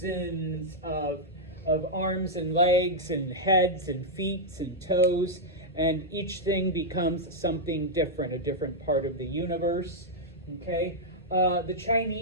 of arms and legs and heads and feet and toes, and each thing becomes something different, a different part of the universe, okay? The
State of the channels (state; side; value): normal; both; correlation -0.05